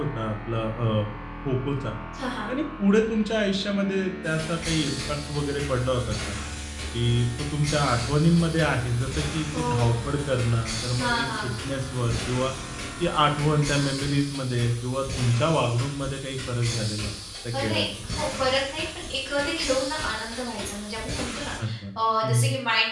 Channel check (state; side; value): identical; both; correlation 1.00